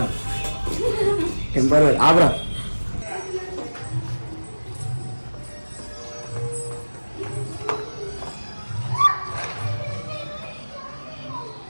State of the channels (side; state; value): both; inverted; correlation -1.00